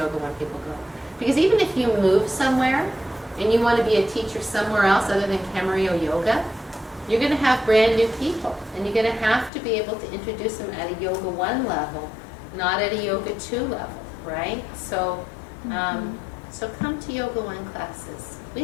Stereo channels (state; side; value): drops out; right; at 9.5 s